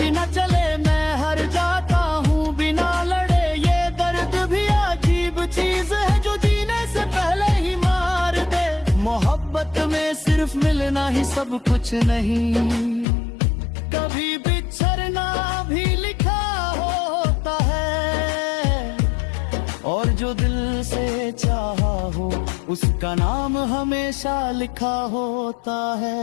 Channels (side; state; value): right; drops out; at 13.1 s